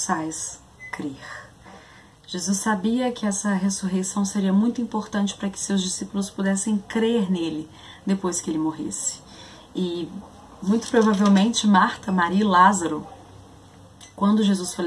crer. Jesus sabia que essa ressurreição seria muito importante para que seus discípulos pudessem crer nele depois que ele morresse. E muito provavelmente Marta, Maria e Lázaro, quando Jesus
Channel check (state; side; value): identical; both; correlation 1.00